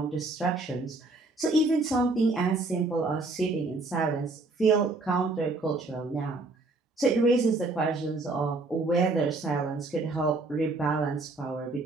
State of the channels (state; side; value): quieter; left; 3.3 dB